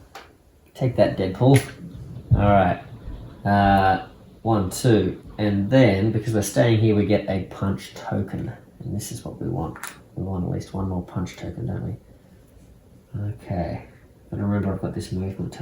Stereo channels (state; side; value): identical; both; correlation 1.00